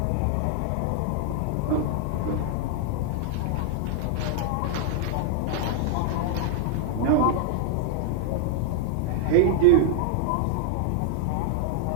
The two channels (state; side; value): different; both; correlation 0.00